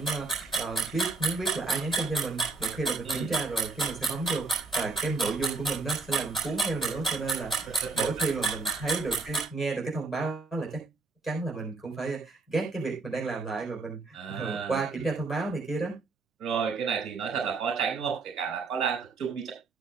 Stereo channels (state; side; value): quieter; left; 3.9 dB